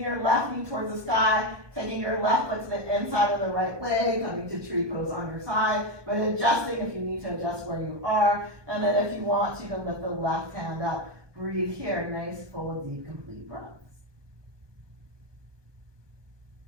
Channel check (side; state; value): left; late; 1.2 ms